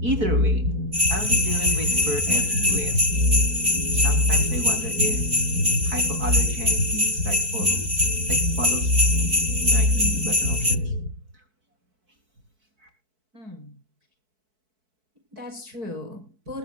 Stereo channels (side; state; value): left; late; 4.6 ms